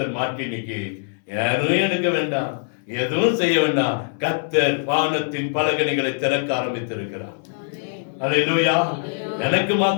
மாற்றி இன்னைக்கு யாரும் எடுக்க வேண்டாம், எதுவும் செய்ய வேண்டாம். கர்த்தர் வானத்தின் பலகணிகளை திறக்க ஆரம்பித்திருக்கிறார். அல்லேலூயா. எனக்கு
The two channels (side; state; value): right; silent; 64 dB below the other